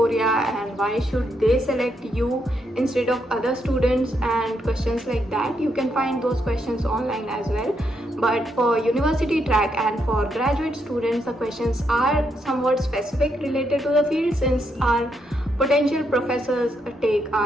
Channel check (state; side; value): normal; both; correlation 0.78